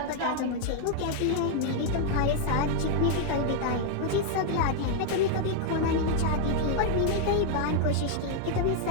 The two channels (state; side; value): different; both; correlation 0.00